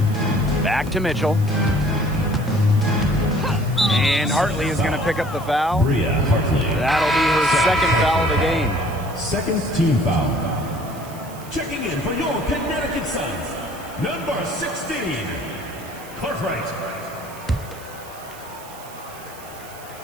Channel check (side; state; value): right; noise; hiss, 19 dB below the sound